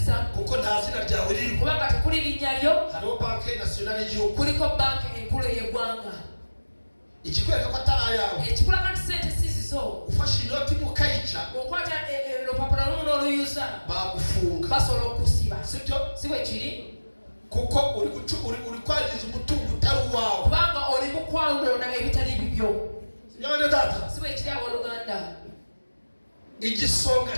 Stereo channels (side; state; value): both; inverted; correlation -1.00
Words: za kuko nta zina ryawe riri. Kubanga tekuli linnya lyo. Hariho banki nasiyonali y'igihugu. Kuliko banki enkulu y'eggwanga. Ikikwereka ko atari ayawe. Ekikulaga nti sente si zizo. Ufashe inoti mukayica. Okwata olupapula lumu n'oluyuza. Bagufunga. Basobola okusiba. Sibyo? Si bwe kiri. Kuko uri kwangiza umutungo utari uwawe. Kubanga oli mu kwanona ebitali bibyo. Nyabane data. Si bwe kiri abooluganda. Igisonga